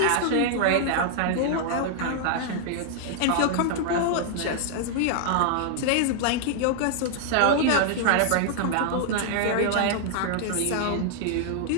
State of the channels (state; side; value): different; both; correlation -0.01